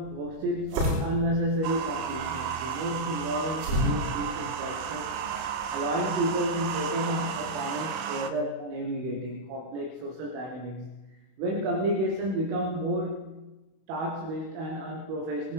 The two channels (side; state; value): left; late; 31 ms